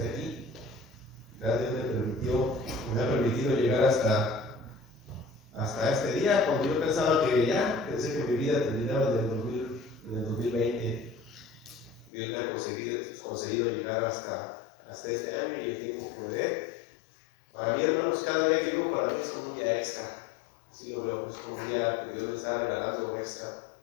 aquí. Dios me ha permitido llegar hasta este día, cuando yo pensaba que pensé que mi vida terminaba en el 2020. Dios me ha conseguido llegar hasta este año y el tiempo que me dé. Para mí, hermanos, cada día que vivo para mí es como un día extra. Así lo veo, es como un día que Dios me está regalando extra.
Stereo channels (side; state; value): right; drops out; at 12.1 s